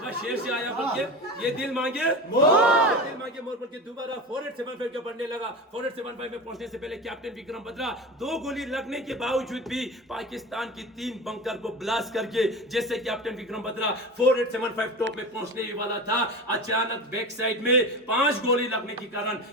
शेर से आया बोल के, ये दिल मांगे मोर, दिल मांगे मोर बोल के दोबारा 4875 के बढ़ने लगा। 4875 में पहुंचने से पहले कैप्टन विक्रम बत्रा 2 गोली लगने के बावजूद भी पाकिस्तान की 3 बंकर को ब्लास्ट करके जैसे कैप्टन विक्रम बत्रा 4875 टॉप में पहुंचने ही वाला था, अचानक बैक साइड में 5 गोली लगने की कारण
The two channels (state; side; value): normal; both; correlation 0.28